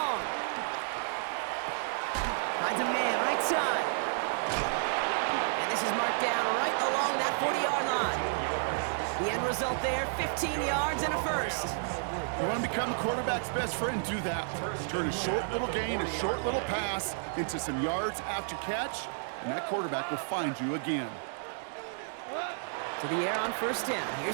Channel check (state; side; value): silent; left; digital silence